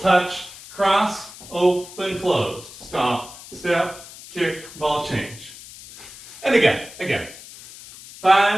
cross, open, closed. Stomp, step, kick, ball change. And again.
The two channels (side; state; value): left; noise; hiss, 17 dB below the sound